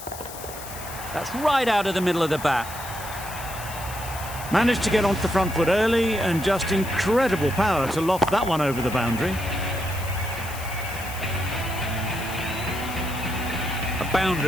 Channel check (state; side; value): noise; left; hiss, 13 dB below the sound